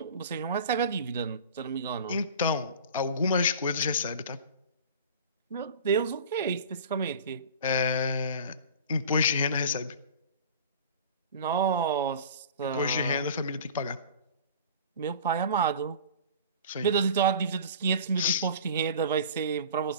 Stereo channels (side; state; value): both; inverted; correlation -0.39